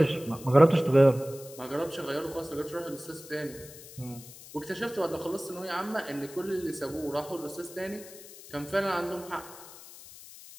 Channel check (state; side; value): noise; left; hiss, 17 dB below the sound